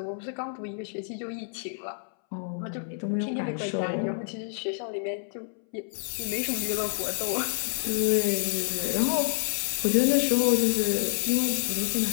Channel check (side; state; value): right; silent; 59 dB below the other